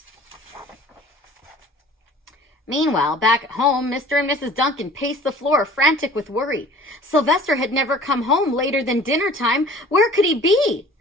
Meanwhile, back at home, Mr. and Mrs. Duncan paced the floor, frantic with worry. Sylvester had never come home later than dinner time. Where could he be?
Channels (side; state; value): both; normal; correlation 0.47